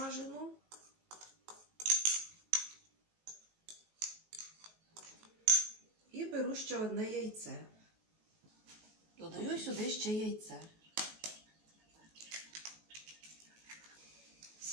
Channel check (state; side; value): late; left; 19 ms